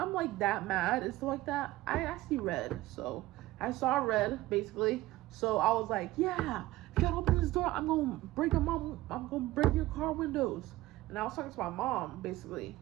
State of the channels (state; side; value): quieter; left; 17.1 dB